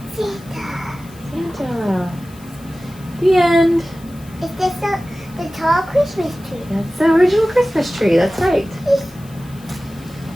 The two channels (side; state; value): left; noise; hiss, 24 dB below the sound